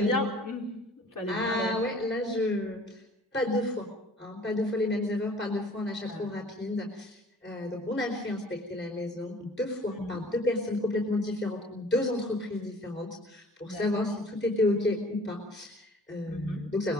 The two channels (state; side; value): normal; both; correlation 0.51